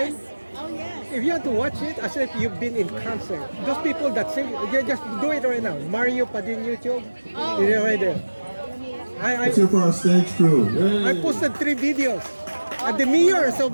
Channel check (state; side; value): inverted; both; correlation -1.00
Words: Yes. Oh yes. If you had to watch it, as if you've been in concert. Those people that sing, you just do it right now. Mario Padin YouTube, it's right there. Let's hear for our stage crew. I Yay. posted 3 videos. At the mirrors